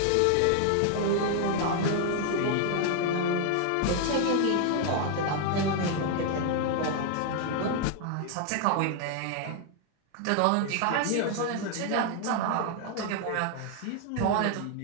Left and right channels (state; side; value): different; both; correlation 0.00